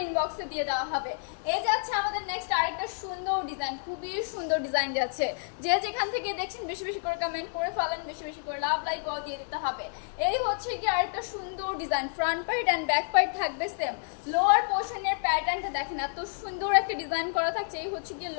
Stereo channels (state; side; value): silent; right; digital silence